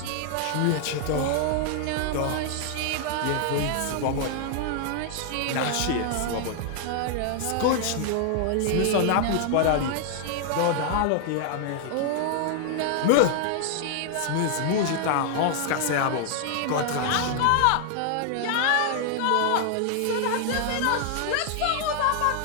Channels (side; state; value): both; different; correlation 0.00